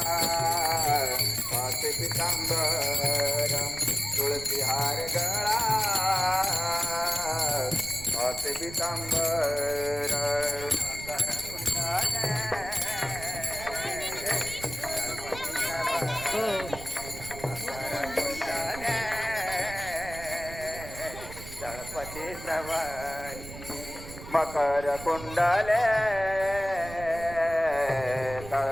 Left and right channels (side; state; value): right; noise; rumble, 13 dB below the sound